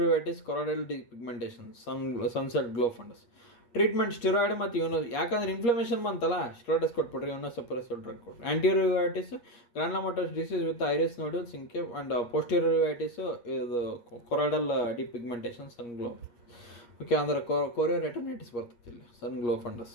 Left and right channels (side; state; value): right; late; 8.4 ms